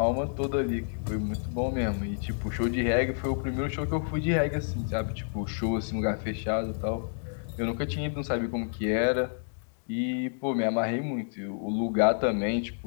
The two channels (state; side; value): silent; right; digital silence